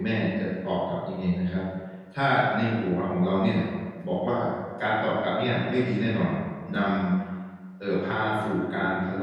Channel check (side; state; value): both; identical; correlation 1.00